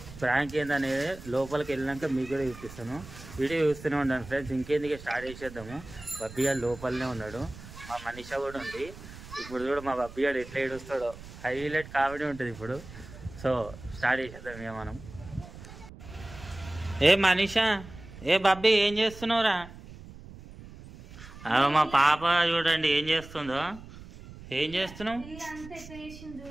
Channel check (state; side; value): noise; right; rumble, 16 dB below the sound